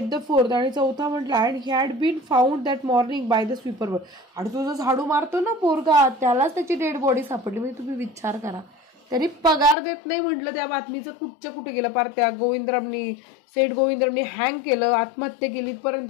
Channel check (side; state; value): right; drops out; at 9.8 s